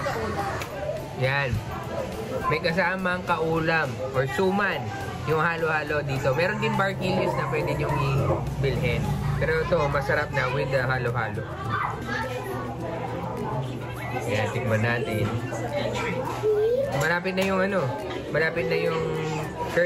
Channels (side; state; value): both; identical; correlation 1.00